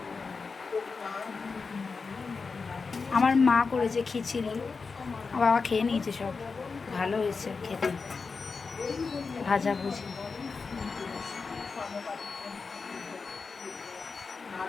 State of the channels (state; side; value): quieter; right; 4.7 dB